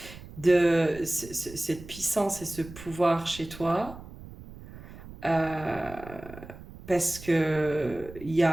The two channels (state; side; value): noise; right; rumble, 16 dB below the sound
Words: De cette puissance et ce pouvoir chez toi. Euh, parce que